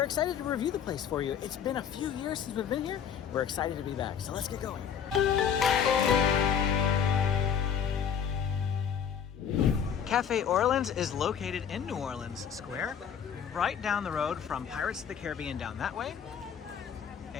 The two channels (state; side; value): quieter; right; 8.0 dB